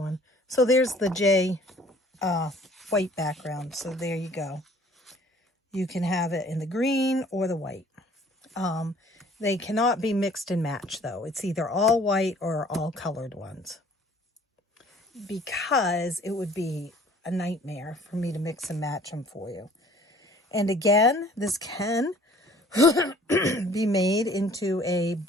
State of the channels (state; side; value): normal; both; correlation 0.54